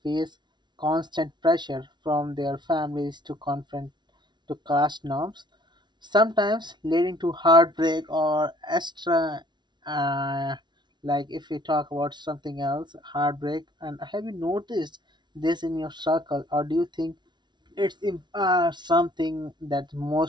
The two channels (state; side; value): late; left; 0.21 ms